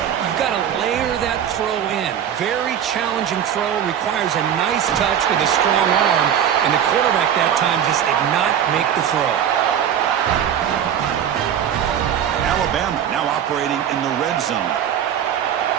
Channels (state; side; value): quieter; left; 9.3 dB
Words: got to layer that throw in. Very challenging throw, requires a nice touch with a strong arm, and the quarterback that time just did not make the throw. Alabama now operating in the red zone.